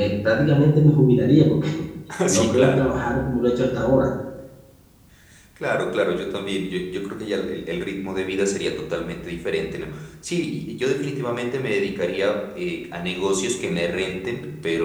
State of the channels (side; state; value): both; identical; correlation 1.00